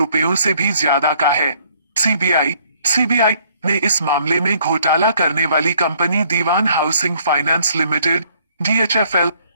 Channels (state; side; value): inverted; both; correlation -0.64